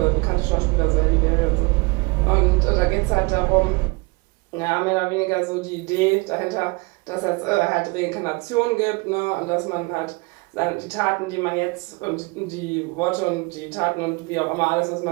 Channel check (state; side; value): quieter; left; 26.8 dB